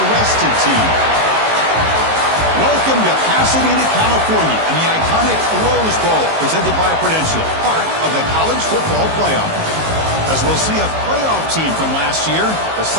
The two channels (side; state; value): left; late; 19 ms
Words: team? Welcome to Pasadena, California, and the iconic Rose Bowl, presented by Prudential, part of the college football playoff. As we'll see a playoff team from last year, the